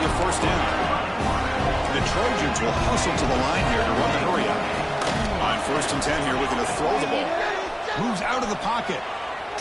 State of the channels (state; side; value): identical; both; correlation 1.00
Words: a 1st down. The Trojans will hustle to the line here to run the hurry up. On 1st and 10 here, looking to throw the ball. Moves out of the pocket.